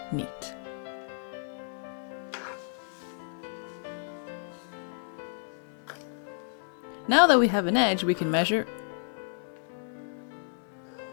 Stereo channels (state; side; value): silent; right; digital silence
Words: neat. Now that we have an edge we can measure,